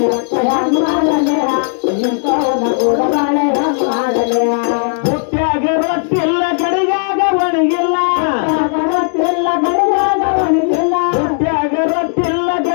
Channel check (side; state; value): right; silent; digital silence